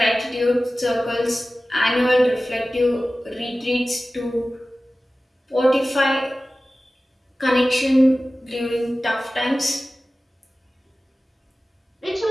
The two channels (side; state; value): both; normal; correlation 0.96